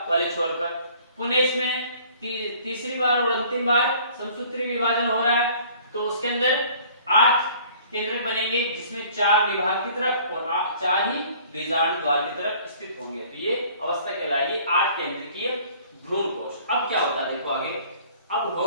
वाले छोर पर। पुनः इसमें तीसरी बार और अंतिम बार समसूत्री विभाजन हो रहा है, तो उसके अंदर 8 केंद्रक बनेंगे, जिसमें 4 निभाग की तरफ और 4 ही बीजांड द्वार की तरफ स्थित होंगे। तो ये अवस्था कहलाएगी 8 केंद्रकीय भ्रूणकोश। अब क्या होता है देखो आगे, अब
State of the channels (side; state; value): both; inverted; correlation -0.53